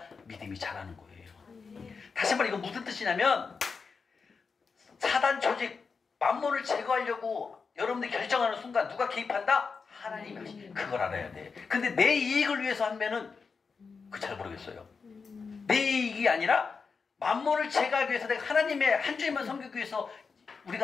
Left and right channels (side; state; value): right; quieter; 5.1 dB